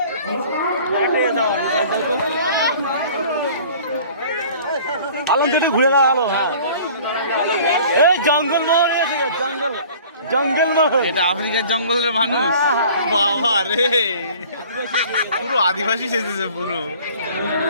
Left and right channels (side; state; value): both; inverted; correlation -0.48